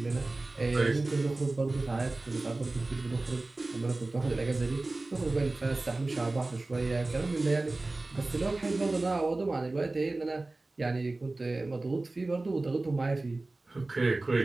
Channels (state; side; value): quieter; left; 3.1 dB